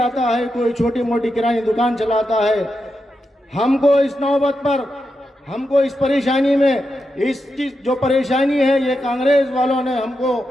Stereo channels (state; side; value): normal; both; correlation 0.87